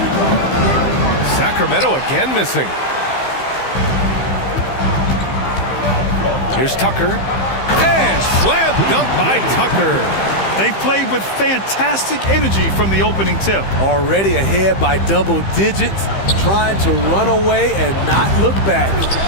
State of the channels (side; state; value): right; late; 15 ms